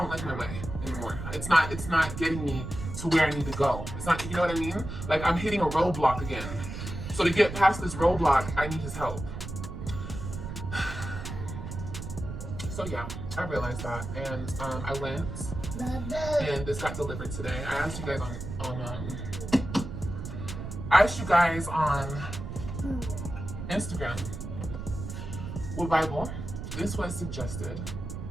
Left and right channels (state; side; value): noise; right; rumble, 7 dB below the sound